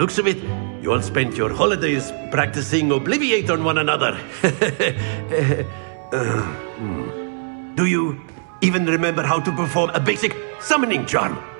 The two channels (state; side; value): silent; left; 65 dB below the other